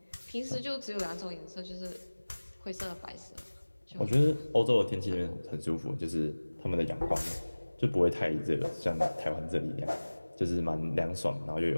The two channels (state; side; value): inverted; both; correlation -1.00